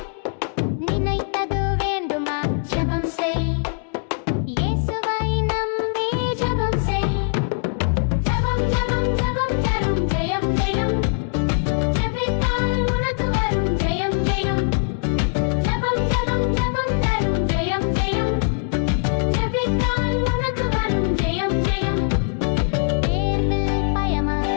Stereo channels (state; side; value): silent; right; digital silence